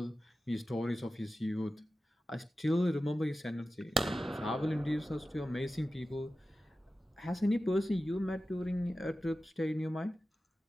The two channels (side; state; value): both; normal; correlation 0.94